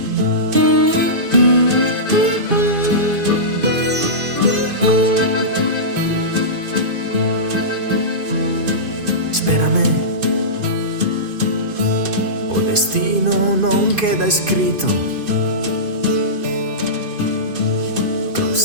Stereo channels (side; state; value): left; late; 2.5 ms